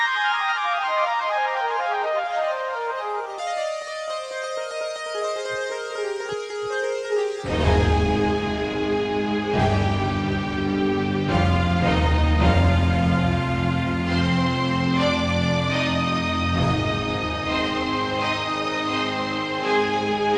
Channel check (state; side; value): identical; both; correlation 1.00